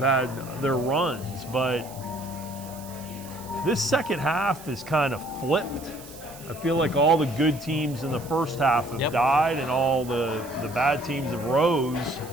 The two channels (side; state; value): right; noise; hiss, 18 dB below the sound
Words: their runs, but this second half is kind of flipped. I feel like all the good teams in the first half have died, and all the bad teams have rose.